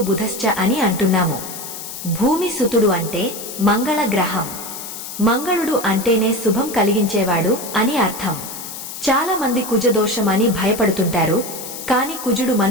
అని అంటున్నాము. భూమి సుతుడు అంటే మంగళ గ్రహం. మంగళుడు అంటేనే శుభం కలిగించేవాడు అని అర్థం. చాలా మంది కుజదోషం అని భయపడుతుంటారు. కాని కుజుడు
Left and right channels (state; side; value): noise; left; hiss, 10 dB below the sound